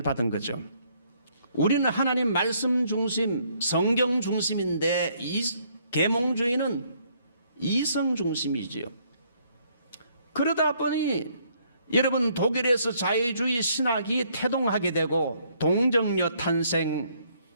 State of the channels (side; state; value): both; inverted; correlation -0.67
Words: 받은 거죠. 우리는 하나님 말씀 중심, 성경 중심인데 이 계몽주의는 이성 중심이지요. 그러다 보니 여러분 독일에서 자유주의 신학이 태동하게 되고 동정녀 탄생,